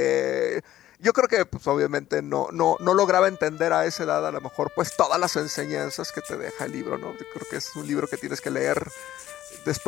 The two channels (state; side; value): quieter; right; 13.2 dB